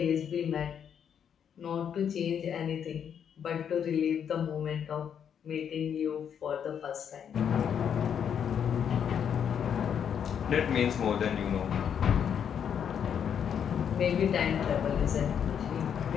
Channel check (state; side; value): quieter; right; 8.2 dB